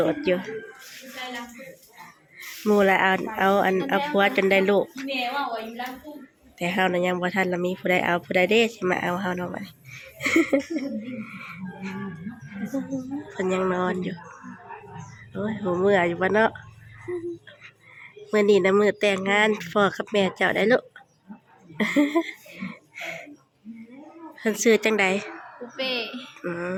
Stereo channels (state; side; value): identical; both; correlation 1.00